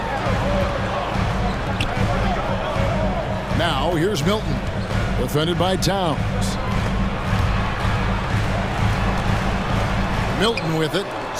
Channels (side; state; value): both; identical; correlation 1.00